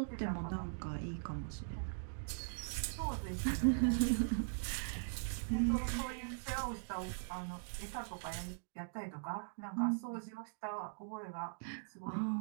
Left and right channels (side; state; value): left; silent; digital silence